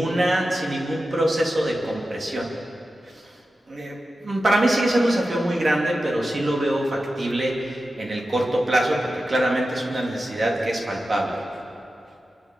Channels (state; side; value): normal; both; correlation 0.92